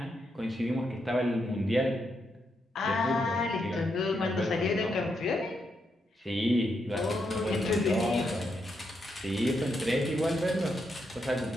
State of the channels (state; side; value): normal; both; correlation 0.81